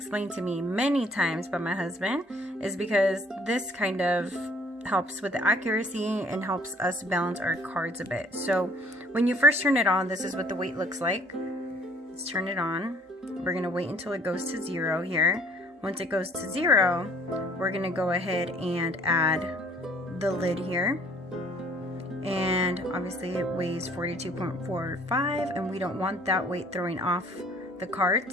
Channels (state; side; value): normal; both; correlation 0.57